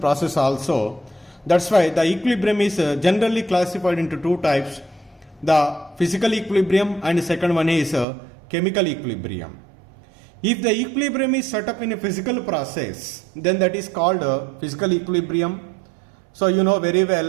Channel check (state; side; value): drops out; left; at 8.1 s